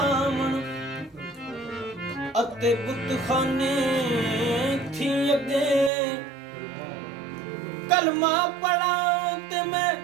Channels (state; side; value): drops out; left; at 5.9 s